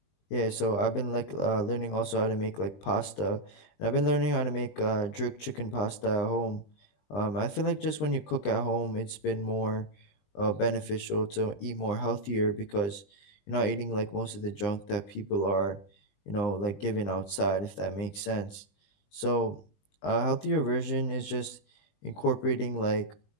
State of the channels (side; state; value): right; late; 20 ms